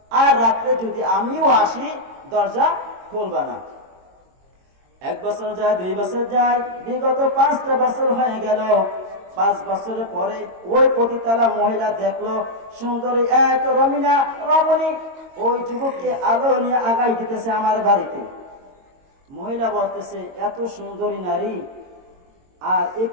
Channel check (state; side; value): late; left; 22 ms